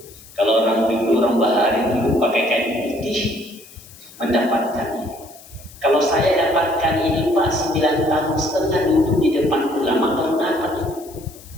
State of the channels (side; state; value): left; noise; hiss, 21 dB below the sound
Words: Kalau orang dulu, orang bahari dulu pakai kain putih mendapatkan ini. Kalau saya dapatkan ini Pak 9,5 tahun duduk di depan ulama kalau dapat ini.